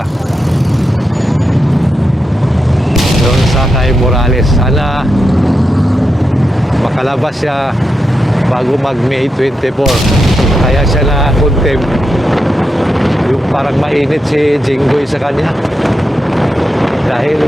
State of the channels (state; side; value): normal; both; correlation 0.87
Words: doon sa kay Morales. Sana makalabas siya bago mag May 24. Kaya siya na contempt. Yung parang mainit si Jinggoy sa kanya. Dahil